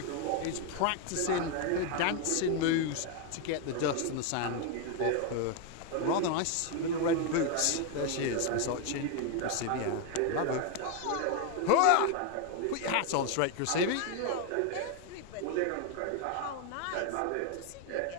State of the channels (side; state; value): both; different; correlation 0.01